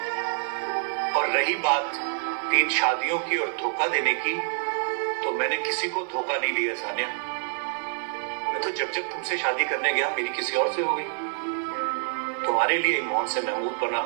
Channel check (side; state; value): left; silent; 60 dB below the other